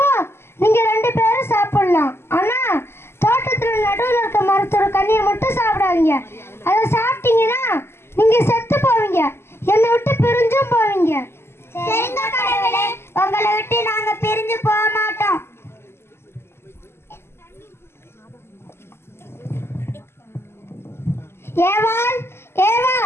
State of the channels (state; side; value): late; right; 0.12 ms